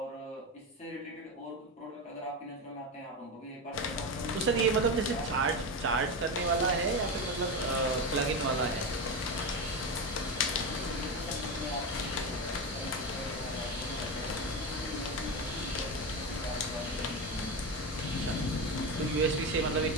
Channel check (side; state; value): both; normal; correlation 0.17